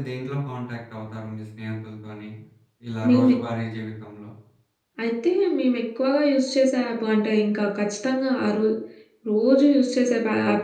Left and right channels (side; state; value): both; identical; correlation 1.00